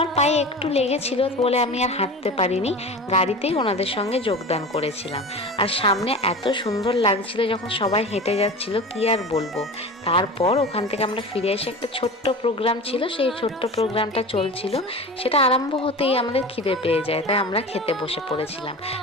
পায়ে একটু লেগেছিল বলে আমি আর হাঁটতে পারিনি, গাড়িতেই ওনাদের সঙ্গে যোগদান করেছিলাম। আর সামনে এত সুন্দর লাগছিল যখন সবাই হেঁটে যাচ্ছিল, কি আর বলবো। তারপর ওখান থেকে আমরা ফিরে এসে একটা ছোট্ট প্রোগ্রাম ছিল, সেই ছোট্ট প্রোগ্রামটা চলছিল। সেটা আরম্ভ হতেই আমাদের খিদে পেয়ে যায়, তাই আমরা খেতে বসে পড়েছিলাম।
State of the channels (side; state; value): both; normal; correlation 0.33